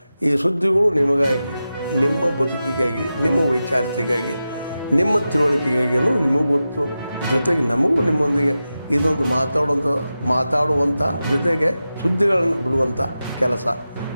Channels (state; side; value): inverted; both; correlation -0.92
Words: ಈ ಸುದ್ದಿಗಳು ನಿಮಗಾಗಿ, ನಿಮ್ಮ ಬದುಕಿಗಾಗಿ, ನಿಮ್ಮ ವೈಚಾರಿಕೆಗಾಗಿ, ನಿಮ್ಮ ತಿಳುವಳಿಕೆಗಾಗಿಯೂ ನಿಮಗೂ ಗೊತ್ತು. ಜೊತೆಗೆ ನಮಗೂ ನಿಮ್ಮೊಂದಿಗೆ ಇದೊಂದು ಮಾತಾಡುವಂಥ ಜೊತೆಗೆ ಸುದ್ದಿಗಳನ್ನು ಬಿಡುವಂಥ ಕೆಲಸ.